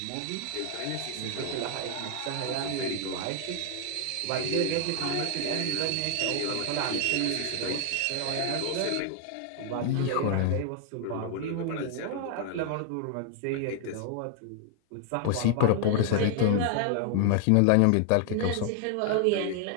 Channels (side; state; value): both; different; correlation 0.00